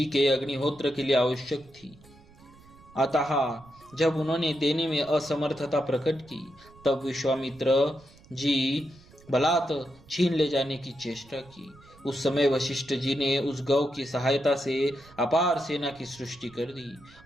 के अग्निहोत्र के लिए आवश्यक थी। अतः जब उन्होंने देने में असमर्थता प्रकट की, तब विश्वामित्र जी बलात् छीन ले जाने की चेष्टा की। उस समय वशिष्ठ जी ने उस गौ की सहायता से अपार सेना की सृष्टि कर दी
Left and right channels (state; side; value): noise; right; rumble, 25 dB below the sound